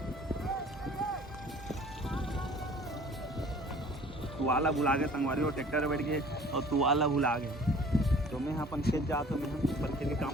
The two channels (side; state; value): both; normal; correlation 0.49